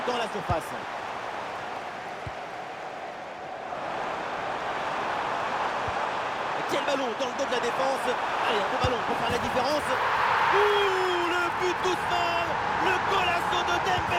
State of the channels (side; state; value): both; identical; correlation 1.00